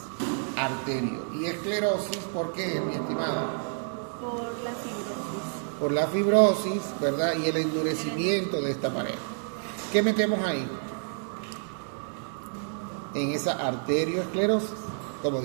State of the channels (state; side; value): silent; left; 59 dB below the other